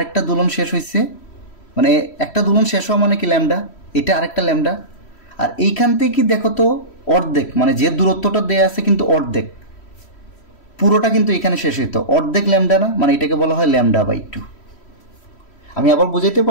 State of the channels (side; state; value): right; late; 3.1 ms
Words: দুলন শেষ হয়েছে, মানে একটা দুলন শেষ হওয়া মানে কি ল্যামডা, এটা আরেকটা ল্যামডা। আর এইখান থেকে দেখো তো অর্ধেক, মানে যে দূরত্বটা দেয়া আছে কিন্তু অর্ধেক, পুরোটা কিন্তু এখানে শেষ হইতো, অর্ধেক ল্যামডা না? মানে এটাকে বলা হয় ল্যামডা বাই 2। আমি আবার বুঝাইতে